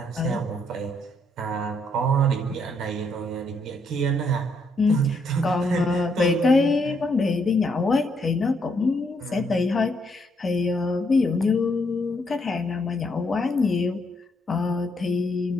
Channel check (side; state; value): both; normal; correlation 0.74